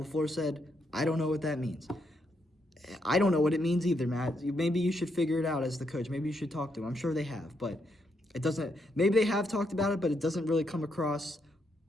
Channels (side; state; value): both; normal; correlation 0.78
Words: said, I don't know what that means. I don't know what it means either, Matt. Maybe you should figure it out as the coach. Maybe you should talk to him. I'm sure they have, but it doesn't. Maybe they have talked about it, but it doesn't really come across